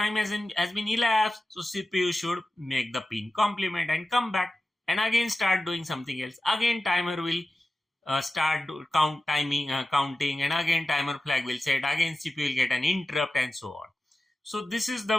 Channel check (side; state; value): both; normal; correlation 0.93